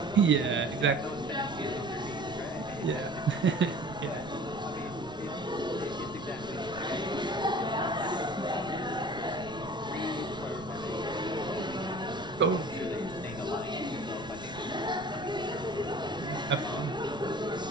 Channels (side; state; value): right; noise; rumble, 16 dB below the sound